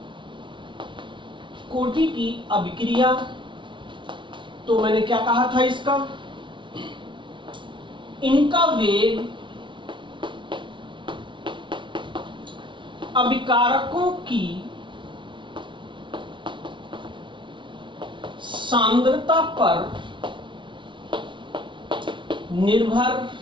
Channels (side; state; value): left; late; 0.24 ms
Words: कोटि की अभिक्रिया। तो मैंने क्या कहा था, इसका इनका वेग अभिकारकों की सांद्रता पर निर्भर